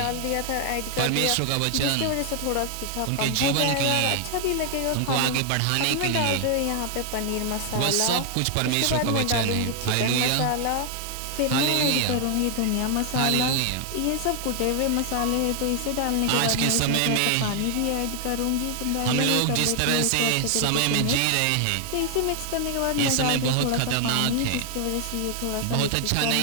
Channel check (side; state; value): both; different; correlation 0.00